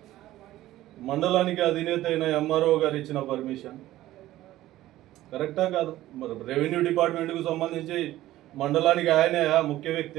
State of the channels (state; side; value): quieter; left; 15.2 dB